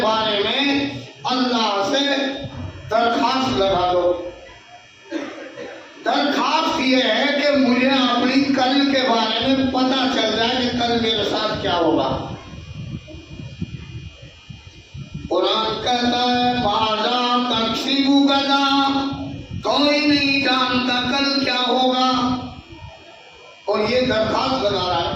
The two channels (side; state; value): both; identical; correlation 1.00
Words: بارے میں اللہ سے درخواست لگا دو۔ درخواست یہ ہے کہ مجھے اپنی کل کے بارے میں پتہ چل جائے کہ کل میرے ساتھ کیا ہوگا۔ قرآن کہتا ہے ماذا تکسب غدا، کوئی نہیں جانتا کل کیا ہوگا، اور یہ درخواست لگا رہا